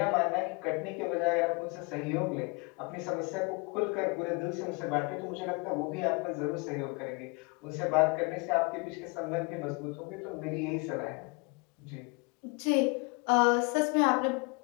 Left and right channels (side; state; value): right; quieter; 29.8 dB